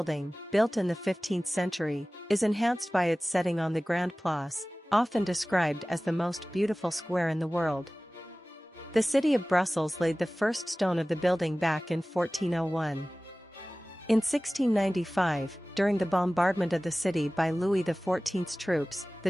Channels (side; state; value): both; normal; correlation 0.98